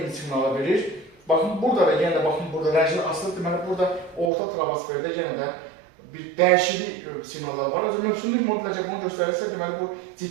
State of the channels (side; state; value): left; drops out; at 4.3 s